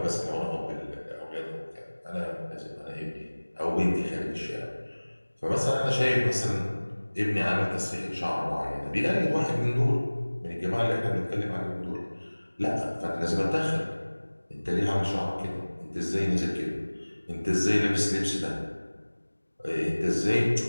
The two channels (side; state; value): both; inverted; correlation -1.00